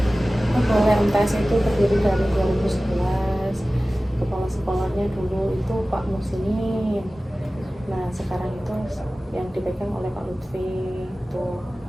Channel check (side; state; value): both; normal; correlation 0.97